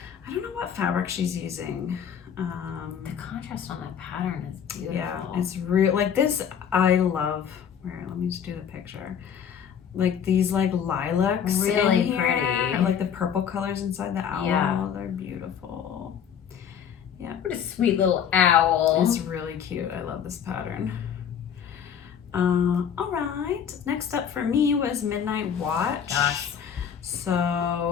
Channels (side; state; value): right; quieter; 8.2 dB